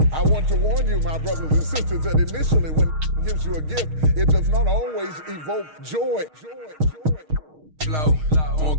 I want to warn you, my brothers and sisters, that initially when he gives you a gift, it does not always evoke joy. Flow,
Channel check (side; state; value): left; late; 6.4 ms